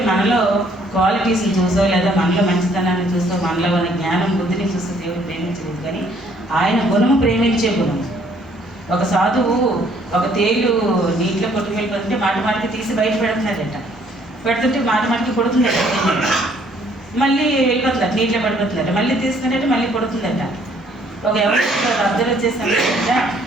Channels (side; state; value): both; normal; correlation 0.63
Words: మనలో క్వాలిటీస్ని చూసో లేదా మనలో మంచితనాన్ని చూసో మనలో ఉన్న జ్ఞానం బుద్ధిని చూస్తూ దేవుడు ప్రేమించలేదు, కానీ ఆయన గుణము ప్రేమించే గుణం. ఒక సాధువు ఒక తేలు నీటిలో కొట్టుకు వెళ్ళిపోతుంటే మాటికి తీసి బయట పెడుతున్నాడట. పెడుతుంటే మాటికి కొడుతుందట, మళ్ళీ వెళ్ళిపోతుందట, నీటిలో పడిపోతుందట, మళ్ళీ తీసుకున్నట్టు మళ్ళీ కొడుతుందట. ఒక ఎవరు అబ్జర్వ్ వచ్చేసాను,